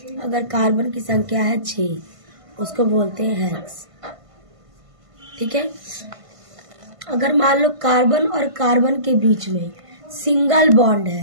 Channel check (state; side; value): late; left; 1.5 ms